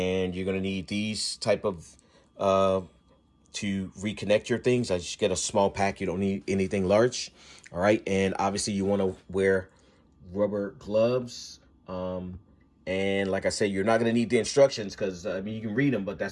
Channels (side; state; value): both; identical; correlation 1.00